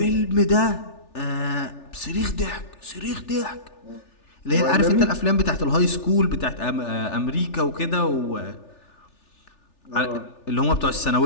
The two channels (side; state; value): right; late; 3.4 ms